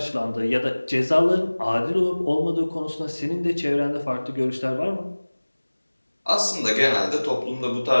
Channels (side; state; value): both; inverted; correlation -1.00